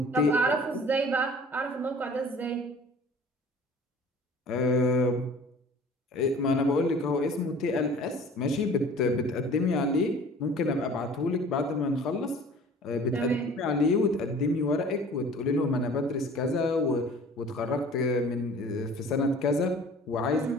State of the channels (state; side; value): normal; both; correlation 0.47